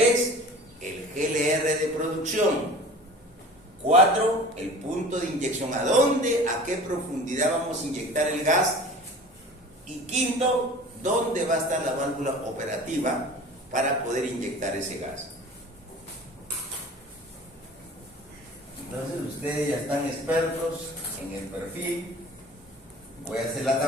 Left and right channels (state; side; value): normal; both; correlation 0.41